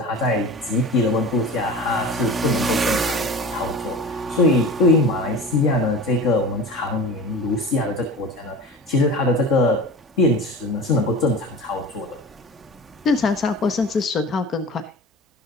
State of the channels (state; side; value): normal; both; correlation 0.35